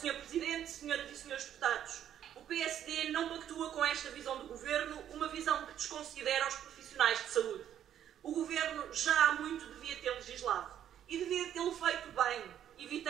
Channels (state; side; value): quieter; left; 10.3 dB